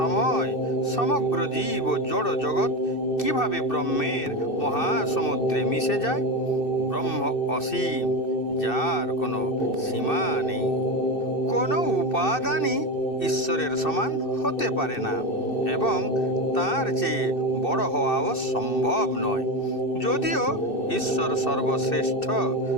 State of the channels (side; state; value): right; late; 2.6 ms